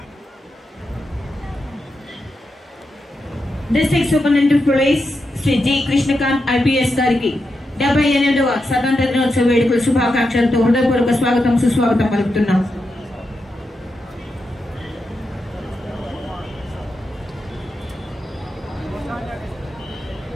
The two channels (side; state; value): both; normal; correlation 0.87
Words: District superintendent police Shri G Krishnakanth IPS గారికి 78వ స్వతంత్ర దినోత్సవ వేడుకల శుభాకాంక్షలతో హృదయపూర్వక స్వాగతం సుస్వాగతం పలుకుతున్నాం.